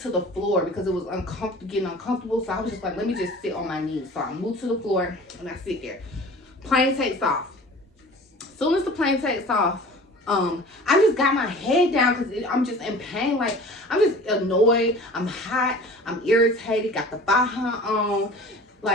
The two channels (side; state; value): both; normal; correlation 0.42